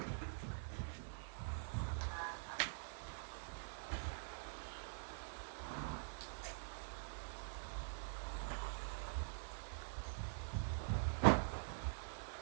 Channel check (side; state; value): left; silent; digital silence